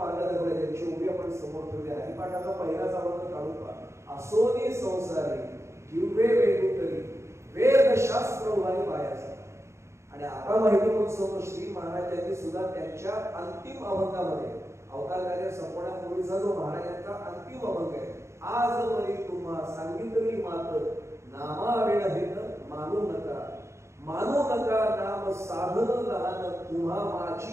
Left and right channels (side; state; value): left; late; 0.14 ms